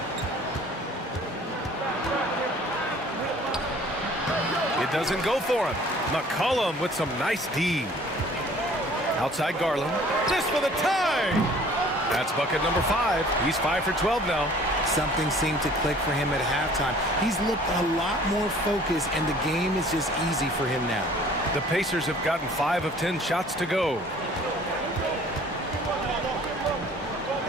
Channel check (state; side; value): normal; both; correlation 0.52